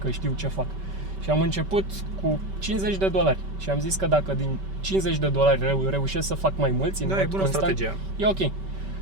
că știu ce fac. Și am început cu $50 și am zis că dacă din $50 reușesc să fac mai mulți în mod bună constant, strategia. e ok.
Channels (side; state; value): left; late; 5.2 ms